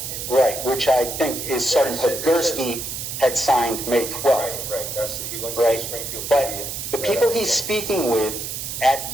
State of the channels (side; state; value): right; noise; hiss, 6 dB below the sound